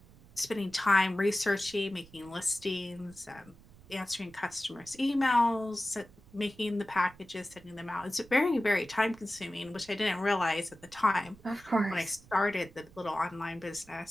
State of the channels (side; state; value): right; noise; rumble, 24 dB below the sound